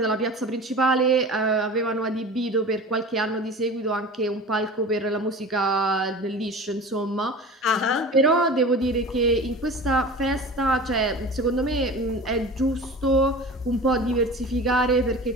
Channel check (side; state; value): both; normal; correlation 0.36